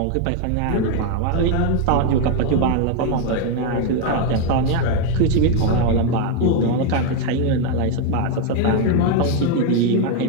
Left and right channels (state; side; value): different; both; correlation 0.01